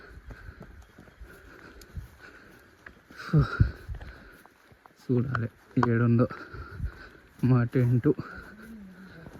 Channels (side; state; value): both; identical; correlation 1.00